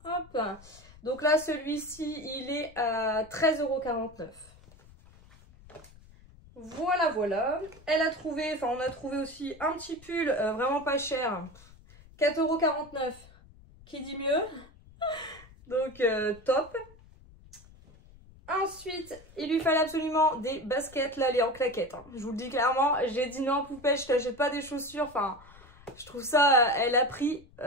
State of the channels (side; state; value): left; noise; rumble, 23 dB below the sound